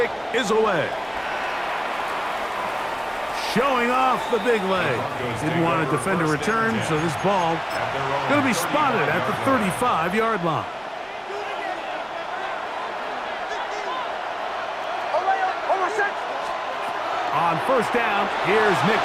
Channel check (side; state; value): both; identical; correlation 1.00